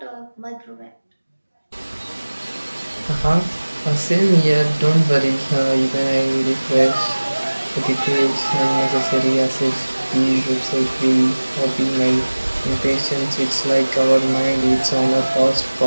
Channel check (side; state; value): both; inverted; correlation -1.00